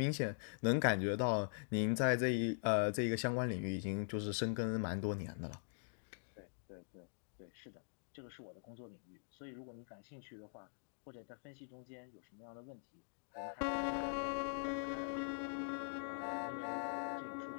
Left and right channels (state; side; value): silent; right; digital silence